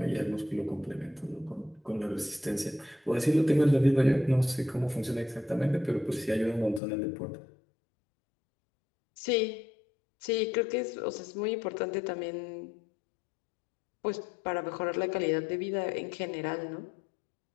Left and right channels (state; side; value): drops out; right; at 6.8 s